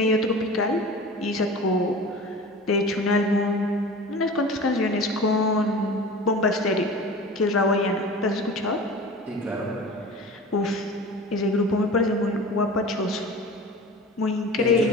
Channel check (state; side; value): normal; both; correlation 0.37